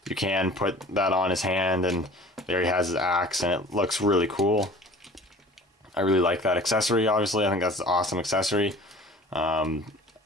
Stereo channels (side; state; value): both; normal; correlation 0.45